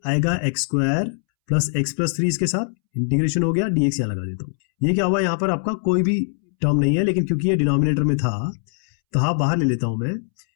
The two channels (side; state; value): right; silent; 65 dB below the other